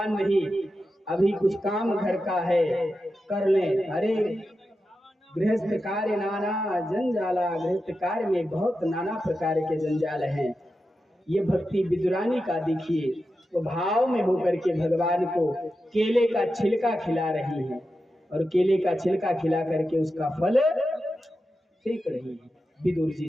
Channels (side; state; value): both; normal; correlation 0.90